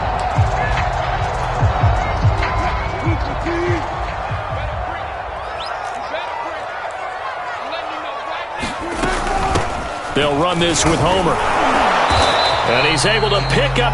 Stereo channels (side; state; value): both; identical; correlation 1.00